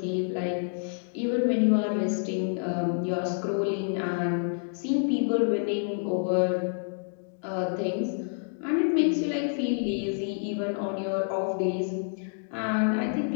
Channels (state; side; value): silent; right; digital silence